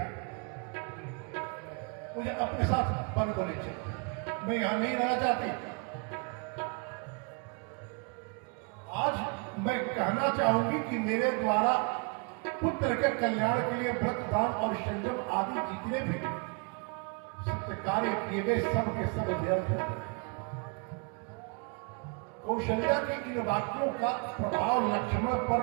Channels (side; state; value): left; quieter; 34.9 dB